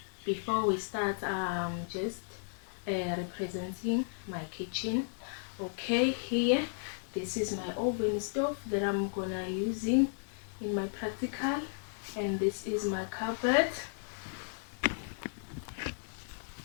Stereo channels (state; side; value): silent; right; digital silence